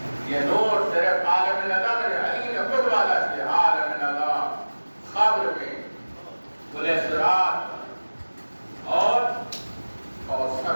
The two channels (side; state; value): both; inverted; correlation -1.00